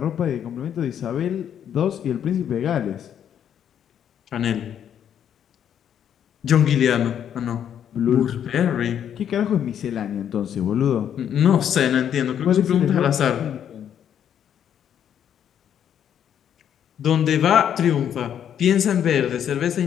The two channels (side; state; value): right; quieter; 9.3 dB